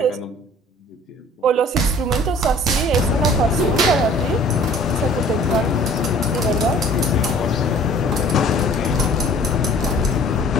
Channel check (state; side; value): normal; both; correlation 0.50